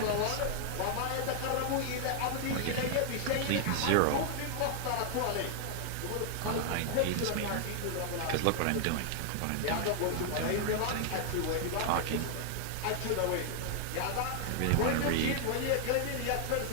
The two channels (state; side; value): different; both; correlation 0.00